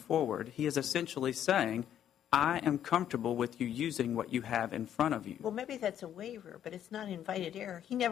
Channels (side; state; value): right; quieter; 10.2 dB